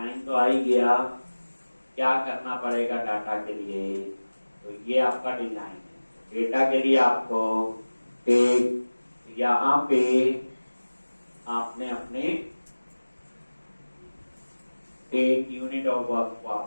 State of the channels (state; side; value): inverted; both; correlation -1.00